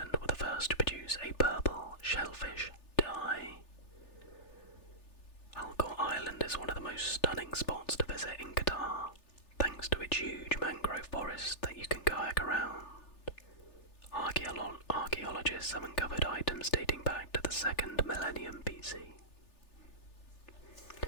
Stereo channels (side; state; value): right; late; 3.4 ms